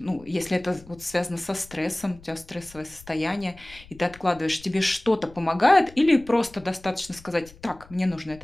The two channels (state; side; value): noise; left; rumble, 22 dB below the sound